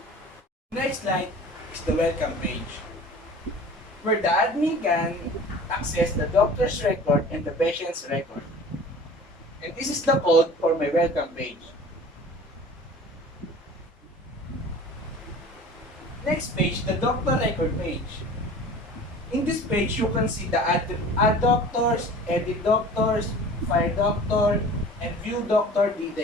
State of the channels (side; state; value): both; normal; correlation 0.42